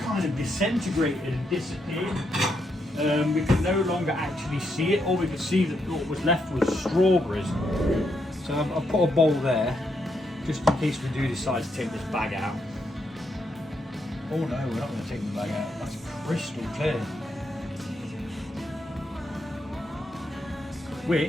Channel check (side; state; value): both; normal; correlation 0.79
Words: kind of disintegrated and disappeared. We could no longer actually see it. All we could see that what was left was strawberries. So I've put a bowl there, just in case we do decide to take this bag out. Oh no, we're not going to take the bag out. That's crystal clear.